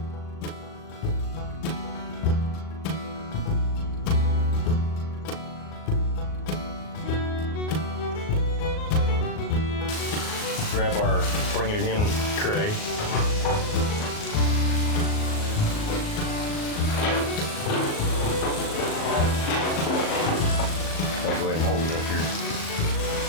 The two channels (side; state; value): right; late; 38 ms